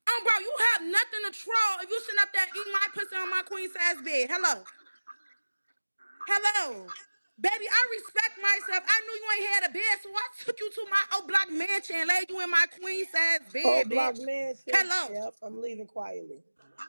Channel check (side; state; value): both; inverted; correlation -1.00